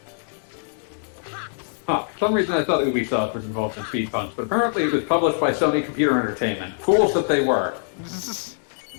Huh, for some reason I thought Ubisoft was involved in Speed Punks, but apparently it was published by Sony Computer Entertainment. Fools that they were.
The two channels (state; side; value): silent; right; 63 dB below the other